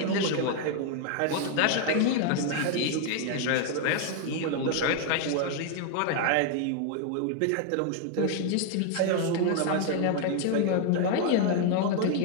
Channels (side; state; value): both; different; correlation 0.00